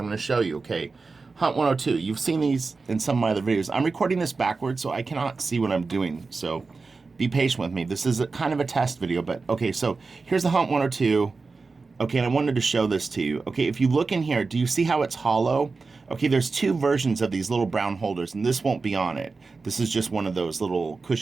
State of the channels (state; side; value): quieter; left; 4.2 dB